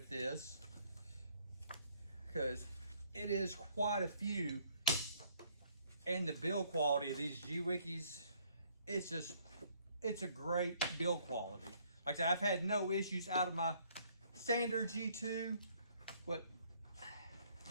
this, because it is quite a few. And the build quality of these Gweikes, it's a great build quality. Like I said, I've had no issues out of my standard G2, but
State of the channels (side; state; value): both; inverted; correlation -0.64